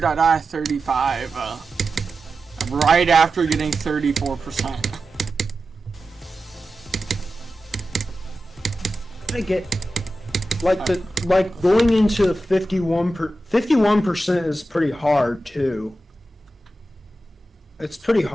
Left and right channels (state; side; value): normal; both; correlation 0.92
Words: I died 35, right after getting 34%. I get, like going into 51% is pretty hard too. It's pretty